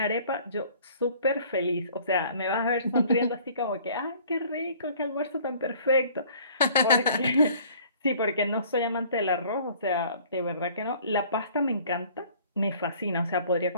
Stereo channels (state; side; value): inverted; both; correlation -0.53